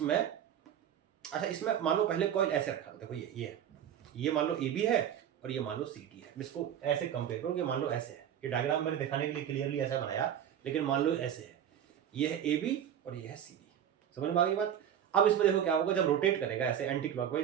अच्छा इसमें मान लो पहले कॉइल ऐसे रखा था, देखो ये मान लो ए बी है और ये मान लो सी डी है। इसको ऐसे कंपेयर करो कि मान लो ऐसे है, ये डायग्राम मैंने दिखाने के लिए क्लियरली ऐसा बनाया, लेकिन मान लो ऐसे है, ये है ए बी और ये है सी डी। समझ में आ गई बात? अब इसमें देखो क्या होगा, जब रोटेट करेगा ऐसे एंटी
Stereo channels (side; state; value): left; quieter; 9.7 dB